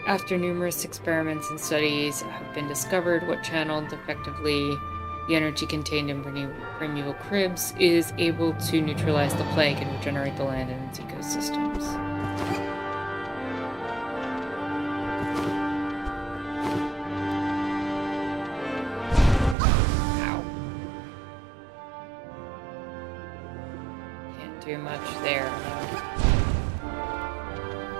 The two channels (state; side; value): drops out; left; at 19.6 s